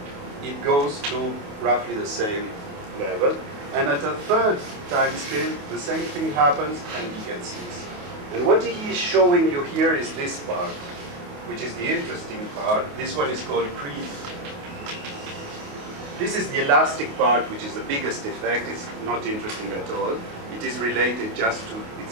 it goes to roughly the same level. And at a third time scale, the same thing happens and he gets this. And what he is showing you here is this part, which is the interesting part. This one is called creep. This is the elastic part, which is the biggest effect. It's not interesting at all. It is related just to,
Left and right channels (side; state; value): left; late; 28 ms